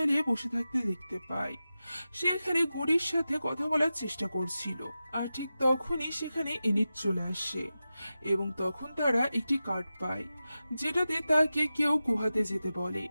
বসে থাকতে দেখতে পাই। সে এখানে গুডির সাথে কথা বলার চেষ্টা করছিল, আর ঠিক তখনই সেখানে এনিট চলে আসে এবং তখন তারা একটি কার্ড পায় যেটাতে তাকে কেউ গুহাতে যেতে বলে।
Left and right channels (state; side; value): inverted; both; correlation -0.93